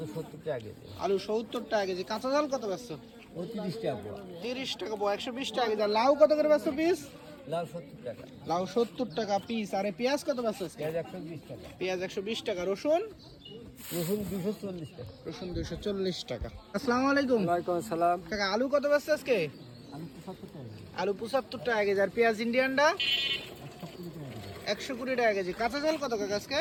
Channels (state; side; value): identical; both; correlation 1.00